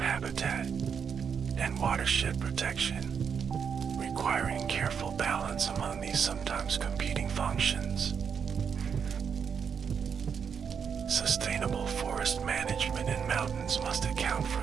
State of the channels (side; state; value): left; quieter; 6.9 dB